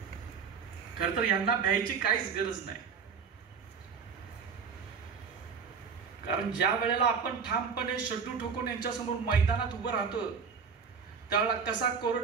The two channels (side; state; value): left; quieter; 6.0 dB